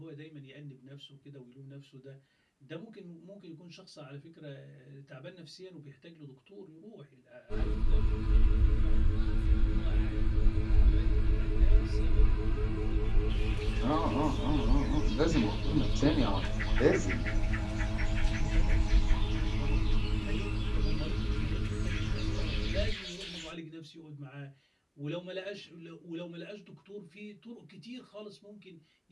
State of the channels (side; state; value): both; identical; correlation 1.00